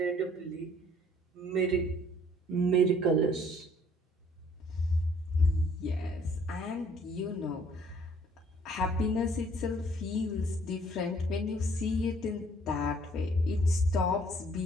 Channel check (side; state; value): both; normal; correlation 0.60